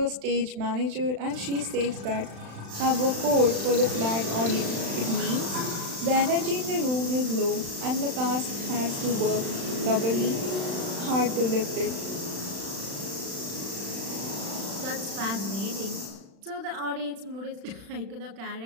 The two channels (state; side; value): late; left; 35 ms